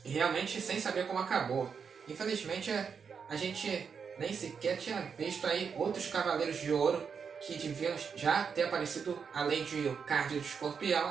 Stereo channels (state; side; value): quieter; left; 6.3 dB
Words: E realmente sem saber como acabou. Infelizmente a gente nem sequer tinha visto aí outros Cavaleiros de Ouro que deviam já ter aparecido, além de o Card do